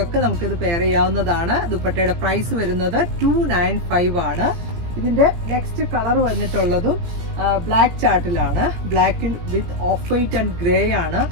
ഒക്കെ നമുക്കിത് പെയർ ചെയ്യാവുന്നതാണ്. ദുപ്പട്ടയുടെ പ്രൈസ് വരുന്നത് 295 ആണ്. ഇതിന്റെ നെക്സ്റ്റ് കളർ വന്നിട്ടുള്ളതും ബ്ലാക്ക് ചാർട്ടിലാണ്. ബ്ലാക്കിൽ with off white and grey ആണ്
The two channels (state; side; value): late; left; 17 ms